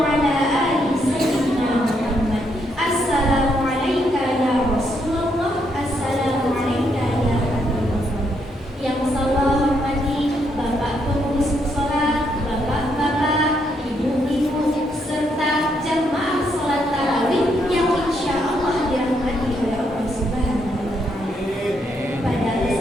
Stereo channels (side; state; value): both; normal; correlation 0.76